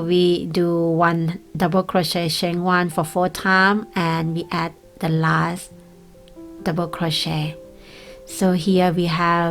do 1 double crochet, chain 1 for 4 times, and we add the last double crochet. So here we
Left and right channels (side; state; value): both; identical; correlation 1.00